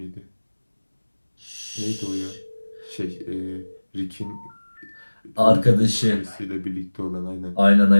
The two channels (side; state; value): both; inverted; correlation -1.00